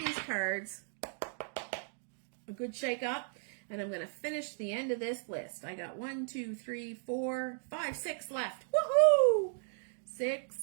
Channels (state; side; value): silent; left; digital silence